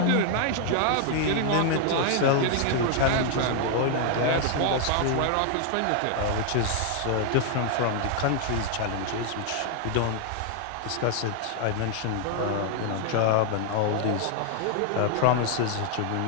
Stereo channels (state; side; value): different; both; correlation 0.00